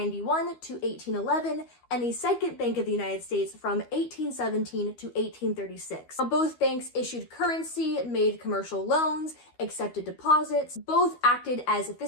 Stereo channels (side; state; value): right; late; 12 ms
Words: to 1811, and the Second Bank of the United States from 1817 to 1836. Now, both banks issued currency, made commercial loans, accepted deposits, both acted as